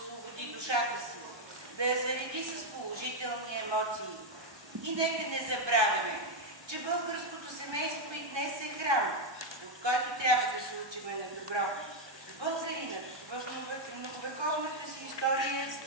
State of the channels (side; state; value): left; late; 1.2 ms